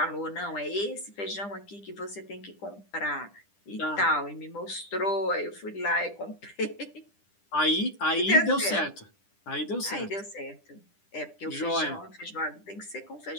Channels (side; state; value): right; late; 10 ms